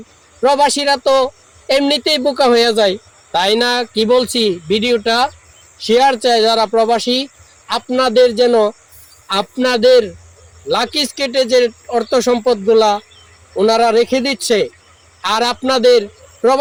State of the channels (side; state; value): both; identical; correlation 1.00